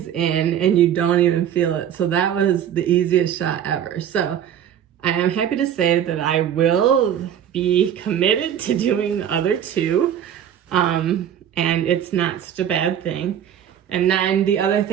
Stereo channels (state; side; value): quieter; left; 9.7 dB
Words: in and you don't even feel it. So that was the easiest shot ever. So I am happy to say that I will be committed to doing the other 2. And it's not such a bad thing. And then the other